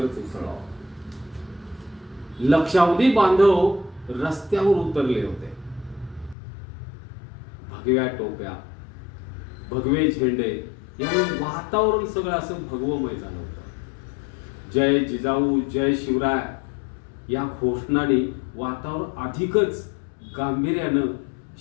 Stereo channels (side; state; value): right; drops out; at 6.4 s